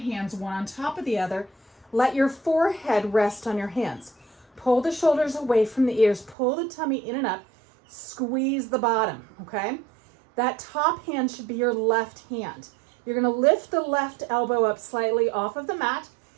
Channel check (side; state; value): left; drops out; at 6.4 s